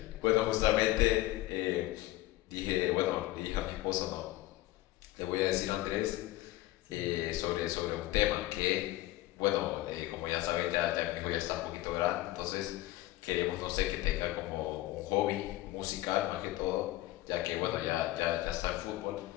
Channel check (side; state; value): right; quieter; 17.0 dB